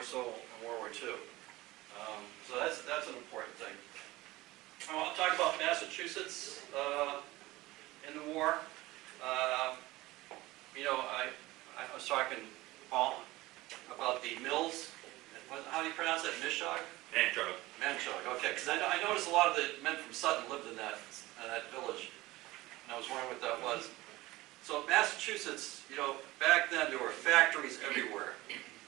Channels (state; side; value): quieter; left; 19.0 dB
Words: so in World War II. So that's an important thing. I want to talk about Massachusetts in the war. You know, I was talking, Paul, about the mills. How do you pronounce that? Mishog? Manchog. Manchog, okay. Because I noticed a lot of the men from Sutton lived in that village. And I was wondering what that was. So Massachusetts, you know, back then there were factories everywhere.